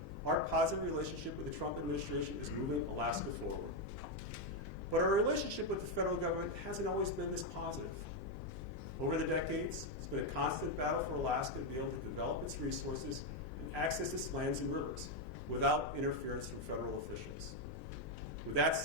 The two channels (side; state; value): left; noise; hum, 12 dB below the sound